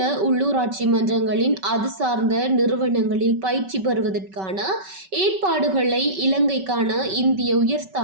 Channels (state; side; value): late; left; 5.3 ms